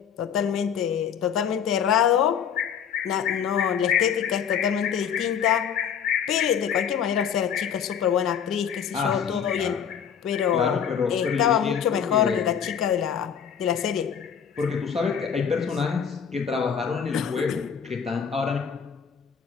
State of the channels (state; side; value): quieter; right; 7.8 dB